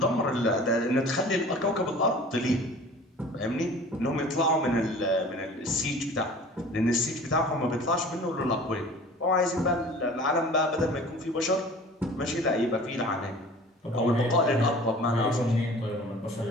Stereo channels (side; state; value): both; normal; correlation 0.44